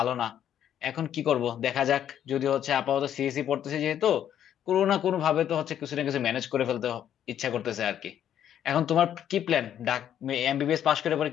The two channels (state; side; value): quieter; right; 10.2 dB